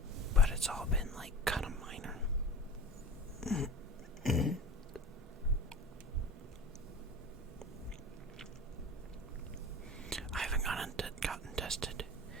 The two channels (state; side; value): normal; both; correlation 0.38